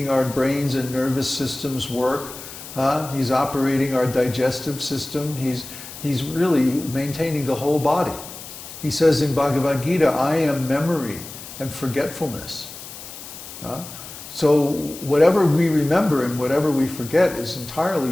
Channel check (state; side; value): noise; left; hiss, 13 dB below the sound